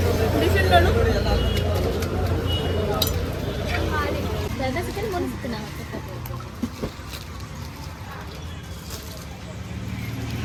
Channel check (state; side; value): identical; both; correlation 1.00